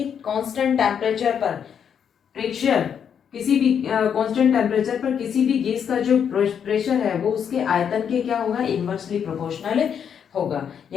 कांस्टेंट टेम्परेचर पर प्रेशर, किसी भी कांस्टेंट टेम्परेचर पर किसी भी गैस का जो प्रेशर है वो उसके आयतन के क्या होगा, इनवर्सली प्रोपोर्शनल होगा।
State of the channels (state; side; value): quieter; right; 7.9 dB